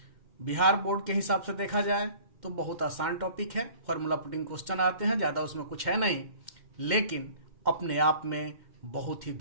बिहार बोर्ड के हिसाब से देखा जाए तो बहुत आसान टॉपिक है। फॉर्मूला पुटिंग क्वेश्चन आते हैं, ज्यादा उसमें कुछ है नहीं, लेकिन अपने आप में बहुत ही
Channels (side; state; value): left; late; 2.1 ms